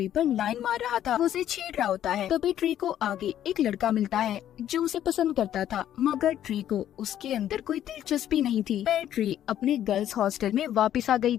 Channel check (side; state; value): right; quieter; 11.2 dB